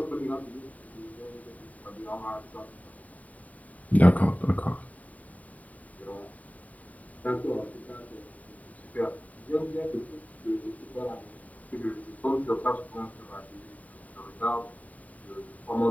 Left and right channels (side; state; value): right; late; 0.071 ms